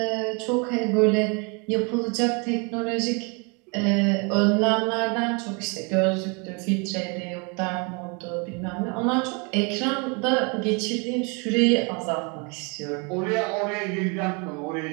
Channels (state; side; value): quieter; left; 32.5 dB